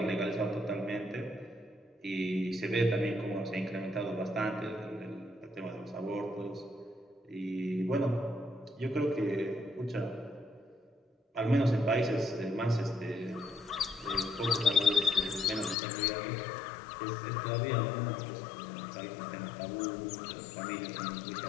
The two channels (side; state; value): right; drops out; at 15.8 s